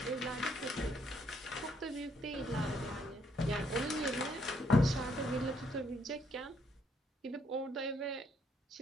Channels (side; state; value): both; normal; correlation 0.71